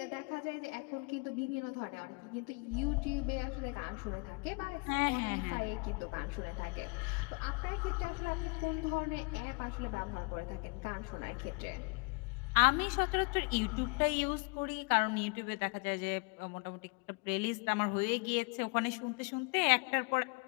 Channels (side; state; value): right; quieter; 31.3 dB